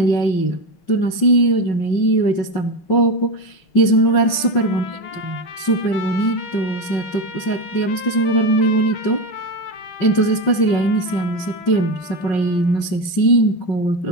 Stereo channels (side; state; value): right; late; 5.5 ms